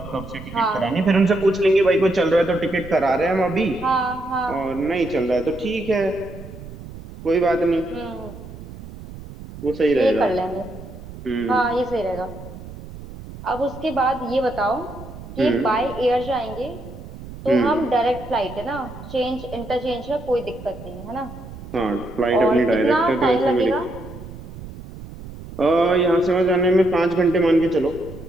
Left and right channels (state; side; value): noise; right; rumble, 14 dB below the sound